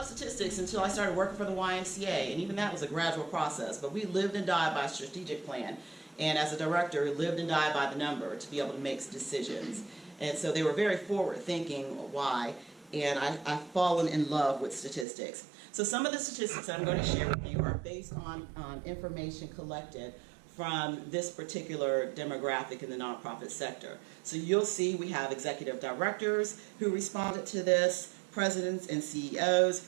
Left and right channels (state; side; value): drops out; left; at 15.1 s